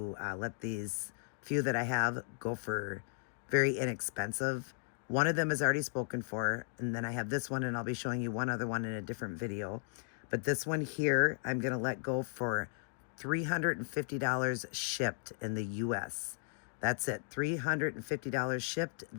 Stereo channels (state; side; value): silent; right; digital silence